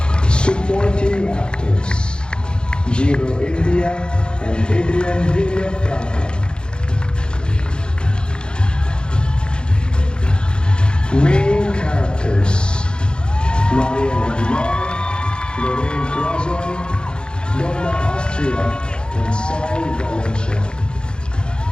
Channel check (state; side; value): late; right; 0.050 ms